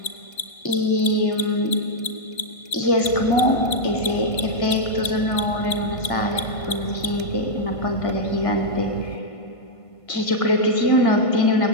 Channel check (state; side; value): late; right; 1.5 ms